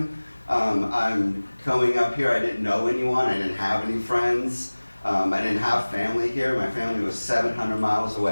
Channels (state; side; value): inverted; both; correlation -1.00